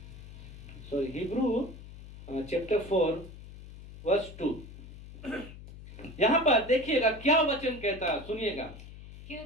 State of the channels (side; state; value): left; noise; hum, 15 dB below the sound